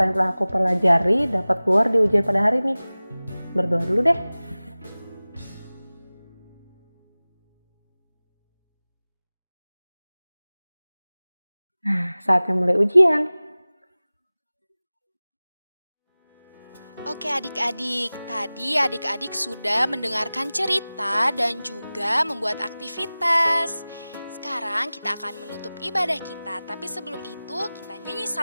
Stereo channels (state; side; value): inverted; both; correlation -0.98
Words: yang telah aku pelajari dapat keluar di ujian pada hari ini. Berdoa dulu deh. Nah, saatnya mulai ujian. Oke adik-adik, tadi adik-adik sudah mendengarkan cerita dan juga membuat aktivitas. Sekarang kita akan menutup ibadah kita, tapi sebelum itu kita nyanyi